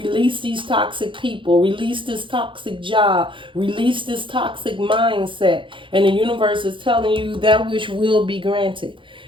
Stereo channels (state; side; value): late; left; 0.24 ms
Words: these toxic people, release this toxic job, release this toxic mindset. And the universe is telling you that wish will be granted.